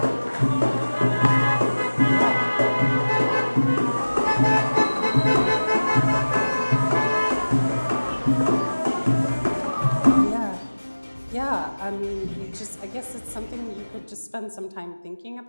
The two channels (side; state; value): both; inverted; correlation -1.00